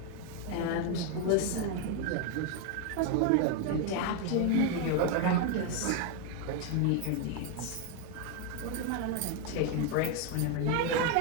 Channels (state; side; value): different; both; correlation 0.01